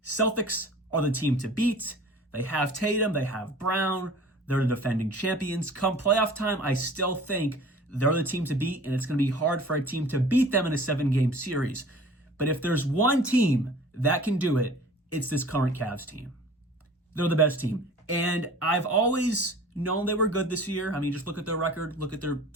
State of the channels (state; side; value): normal; both; correlation 0.45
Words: Celtics are the team to beat. They have Tatum, they have Brown, they're the defending champions. Come playoff time, I still think they're the team to beat, and it's going to be hard for a team to beat them in a 7-game series. But if there's one team that can do it, it's this current Cavs team. They're the best team. And I've always known they were good this year. I mean, just look at their record, look at their